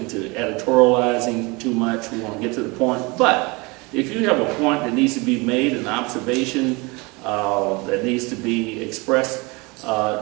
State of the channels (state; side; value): quieter; left; 26.4 dB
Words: editorializing too much, we want to get to the point. But if you have a point that needs to be made, an observation that needs to be expressed,